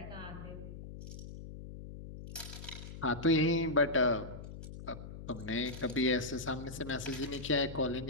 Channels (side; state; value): left; noise; hum, 11 dB below the sound